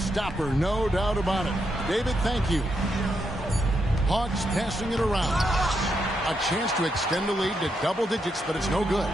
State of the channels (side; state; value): both; normal; correlation 0.81